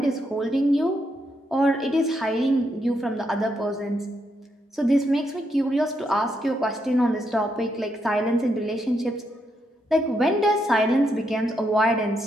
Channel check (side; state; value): both; normal; correlation 0.79